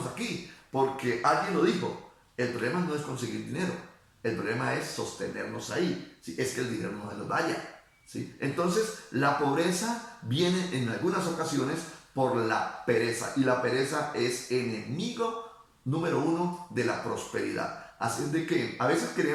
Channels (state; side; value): identical; both; correlation 1.00